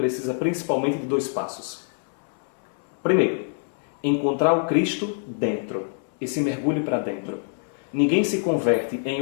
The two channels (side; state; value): right; silent; 62 dB below the other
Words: principalmente de 2 passos. Primeiro, encontrar o Cristo dentro, esse mergulho para dentro. Ninguém se converte em